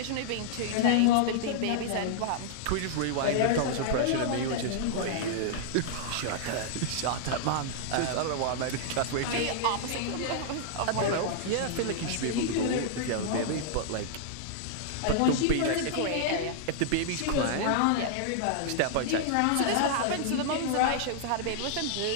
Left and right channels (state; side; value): different; both; correlation -0.01